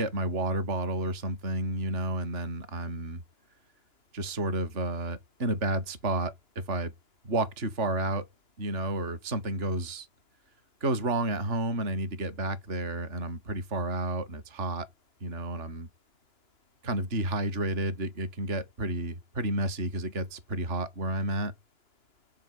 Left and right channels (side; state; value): left; late; 2.9 ms